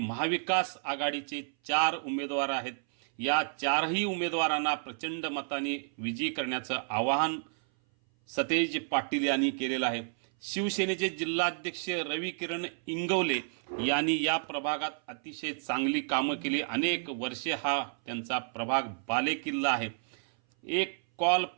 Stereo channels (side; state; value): left; silent; 57 dB below the other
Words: आघाडीचे 4 उमेदवार आहेत. या 4ही उमेदवारांना प्रचंड मताने विजयी करण्याचं आवाहन सतेज पाटील यांनी केलेलं आहे. शिवसेनेचे जिल्हाध्यक्ष रविकिरण इंगवले यांनी या प्रभागात अतिशय चांगली कामं केली. अनेक वर्षे हा त्यांचा प्रभाग बालेकिल्ला आहे. एक कॉल